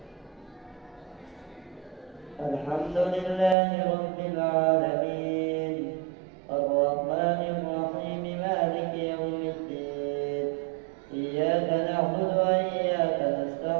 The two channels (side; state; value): left; drops out; at 3.6 s